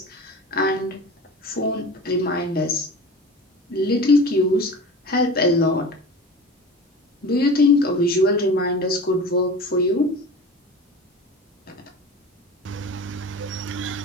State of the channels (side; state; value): both; normal; correlation 0.35